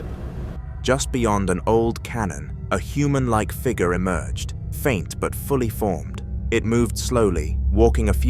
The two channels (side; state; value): both; identical; correlation 1.00